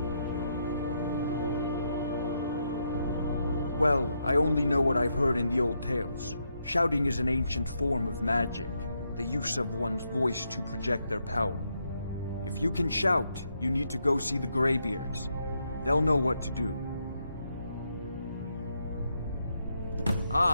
Well, I only know what I've heard in the old tales. Shouting is an ancient form of magic, the use of one's voice to project their power. If you can shout, you need to go see the Greybeards. They'll know what to do.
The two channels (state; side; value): inverted; both; correlation -0.79